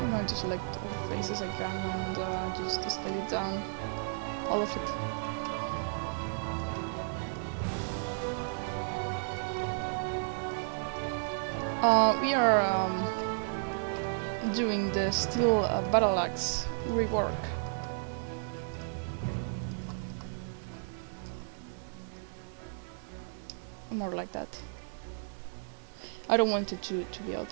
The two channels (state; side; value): silent; left; digital silence